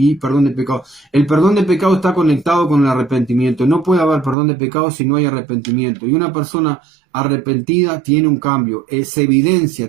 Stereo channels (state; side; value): drops out; left; at 4.4 s